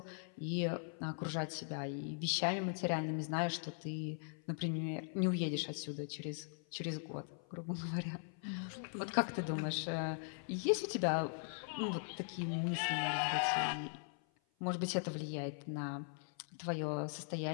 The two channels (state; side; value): silent; right; 51 dB below the other